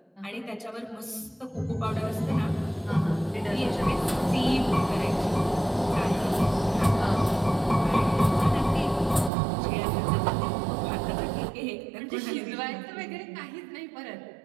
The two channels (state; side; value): drops out; left; at 9.3 s